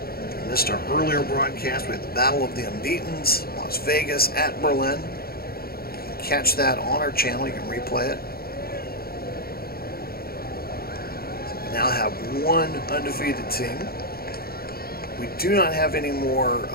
missed our earlier broadcast, we had the Battle of the Unbeatens, Las Vegas at Berlin. You can catch that on our channel. You can replay it. So we now have one undefeated team. We do not have any more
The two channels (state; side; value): late; right; 0.44 ms